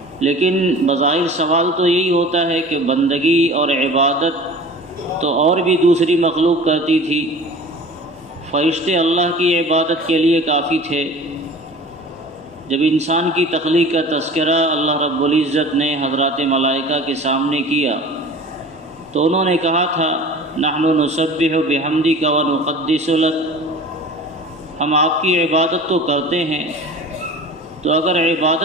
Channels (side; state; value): both; normal; correlation 0.40